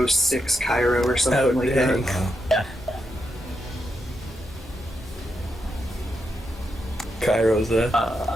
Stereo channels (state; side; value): normal; both; correlation 0.83